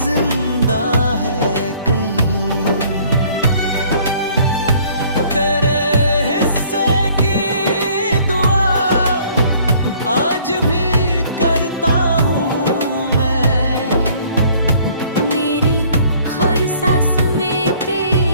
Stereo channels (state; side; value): inverted; both; correlation -0.58